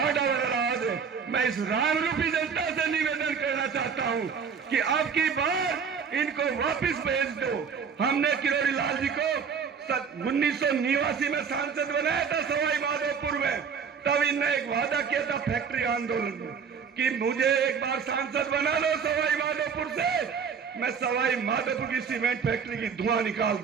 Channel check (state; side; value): quieter; left; 6.4 dB